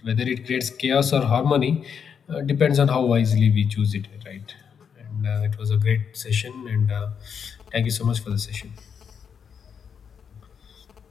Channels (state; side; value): quieter; right; 7.1 dB